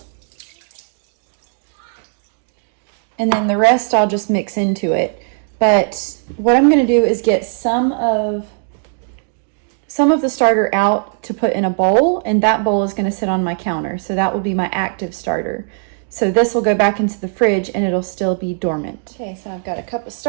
and then the rest I'll just mix into it. But what I'm gonna do is get some of the starter out to put in a bowl, and that bowl is gonna sit on my counter. So that will be my active starter. So this will go back into the fridge and it'll still be dormant. Okay, so I've got a cup of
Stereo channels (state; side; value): silent; left; 59 dB below the other